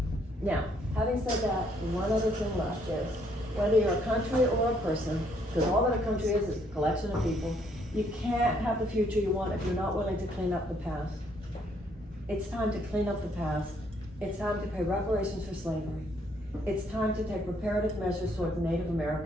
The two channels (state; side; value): normal; both; correlation 0.68